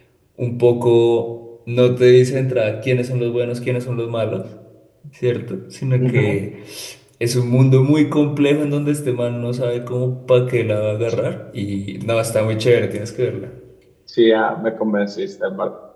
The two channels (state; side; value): identical; both; correlation 1.00